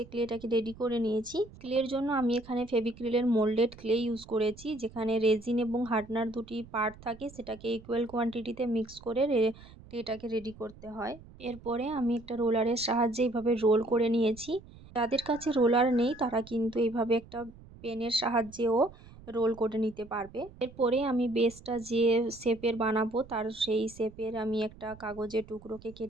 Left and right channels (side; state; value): right; noise; rumble, 20 dB below the sound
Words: ক্লেটাকে রেডি করে নিয়েছি। ক্লের জন্য আমি এখানে ফেভিক্রিলের মোল্ডেড ক্লে ইউজ করেছি, যেখানে রেজিন এবং হার্ডনার দুটি পার্ট থাকে, সেটাকে ইকুয়াল কোয়ান্টিটিতে মিক্স করে ক্লেটাকে রেডি করতে হয়। এরপরে আমি একটা রোলারের সাহায্যে এইভাবে রোল করে নিয়েছি। যাদের কাছে রোলার নেই তারা কিন্তু এইভাবে একটা পেনের সাহায্যেও রোল করে নিতে পারবে। এরপরে আমি বেসটা যে শেপের বানাবো তার সেই শেপের আমি একটা কাগজের টুকরোকে